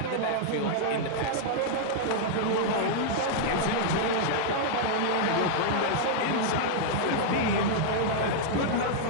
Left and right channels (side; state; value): both; different; correlation -0.01